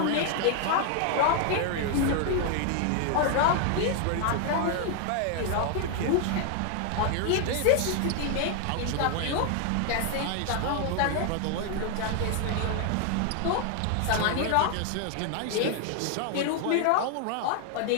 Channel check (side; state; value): both; different; correlation 0.00